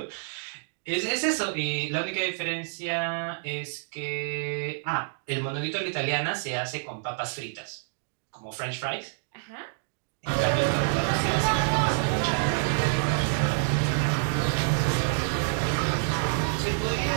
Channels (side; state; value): left; silent; digital silence